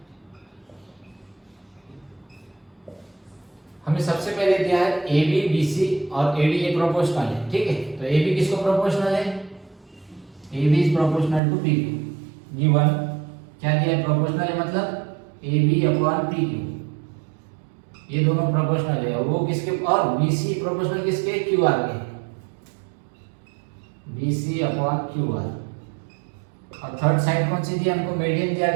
हमें सबसे पहले दिया है ए बी बी सी और ए डी ये प्रोपोर्शनल है, ठीक है। तो ए बी किसको प्रोपोर्शनल है, A B is proportional to P Q. Given क्या दिया है, प्रोपोर्शनल है मतलब A B upon P Q, ये दोनों प्रोपोर्शनल है। और वो किसके, और बी सी प्रोपोर्शनल किसके, क्यू आर के, B C upon Q R. और थर्ड साइड कौन सी दी हमको, मीडियन दिया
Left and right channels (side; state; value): left; drops out; at 11.4 s